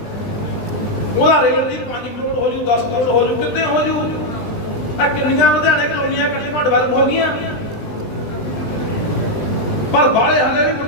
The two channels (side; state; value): right; late; 20 ms